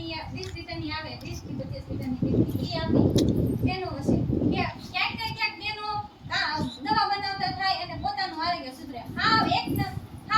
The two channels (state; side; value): identical; both; correlation 1.00